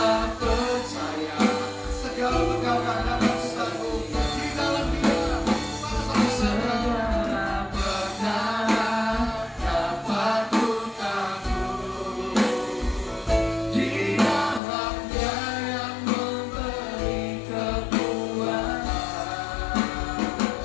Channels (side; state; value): right; drops out; at 14.6 s